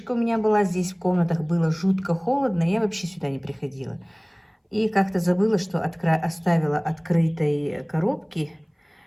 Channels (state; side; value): identical; both; correlation 1.00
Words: у меня была здесь, в комнатах было жутко холодно. Я вообще сюда не приходила. И как-то забыла, что оставила открытой коробки.